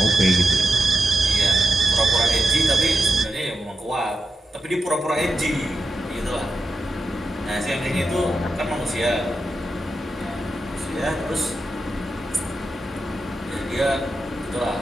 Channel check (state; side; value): normal; both; correlation 0.88